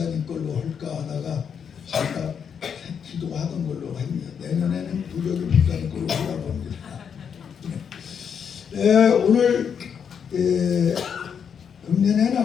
걸로 할까 하다가 제가 기도하던 걸로 합니다. 내년에는 부적이 목사님 걸로 하려고 합니다. 오늘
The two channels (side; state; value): right; quieter; 7.3 dB